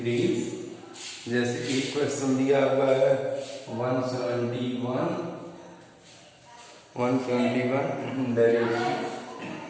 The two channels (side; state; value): both; identical; correlation 1.00